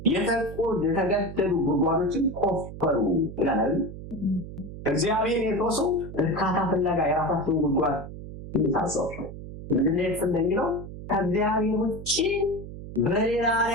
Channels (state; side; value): noise; right; hum, 11 dB below the sound